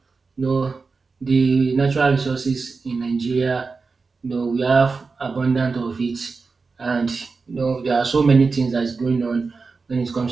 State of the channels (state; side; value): quieter; left; 4.4 dB